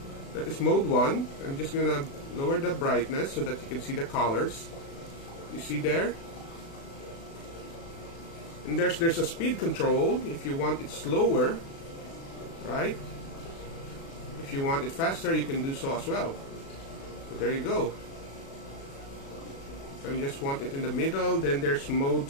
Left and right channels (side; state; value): right; late; 36 ms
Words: That is mode 1. I'm just gonna lower the brightness so that you can see the colors. You see there? And there's a speed control if you want it slower, right? If you want it faster, you can do so as well. So there you go. So you just want it in the middle. Then there's mode